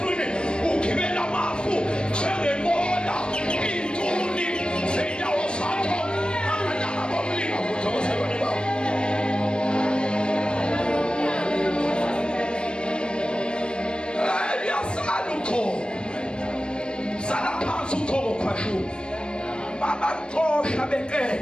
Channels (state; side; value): late; right; 0.054 ms